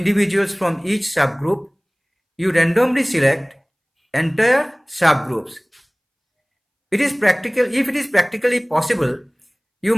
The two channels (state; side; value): identical; both; correlation 1.00